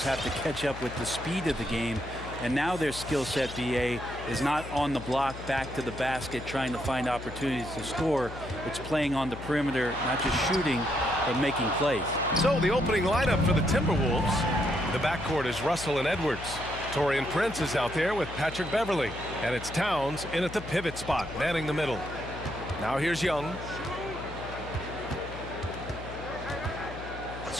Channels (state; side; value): noise; left; hum, 12 dB below the sound